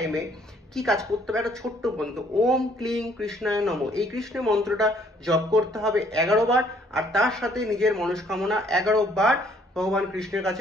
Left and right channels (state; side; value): normal; both; correlation 0.63